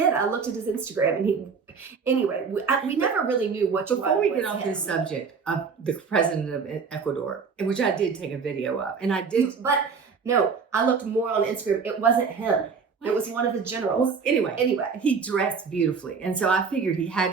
I looked at his Instagram and we never really knew which one. Before we get off this subject of the president of Ecuador, which I did take a video of, and I did. But no, I looked more on Instagram. It wasn't him. What? It was one of the generals. Well, anyway, he dressed beautifully. And so I figured he had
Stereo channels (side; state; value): left; quieter; 5.5 dB